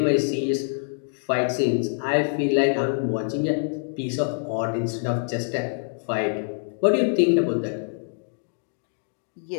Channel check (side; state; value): right; silent; digital silence